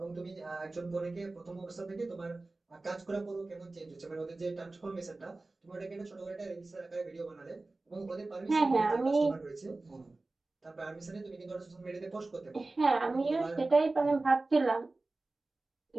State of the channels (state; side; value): quieter; left; 3.2 dB